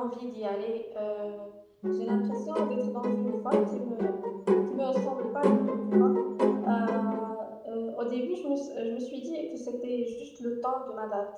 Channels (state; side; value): identical; both; correlation 1.00